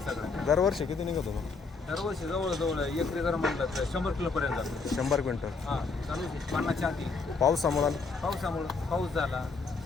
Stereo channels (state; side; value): quieter; right; 4.3 dB